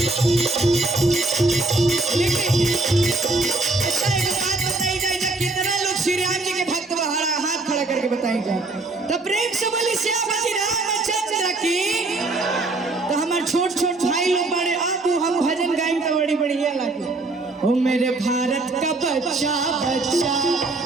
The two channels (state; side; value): quieter; left; 3.2 dB